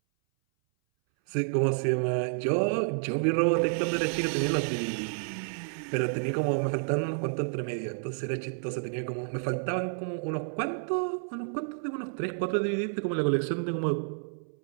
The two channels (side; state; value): left; silent; 58 dB below the other